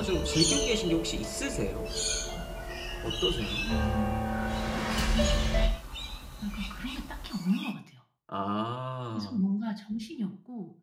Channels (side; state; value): both; identical; correlation 1.00